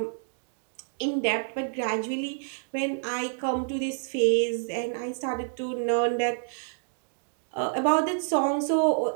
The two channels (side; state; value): left; silent; digital silence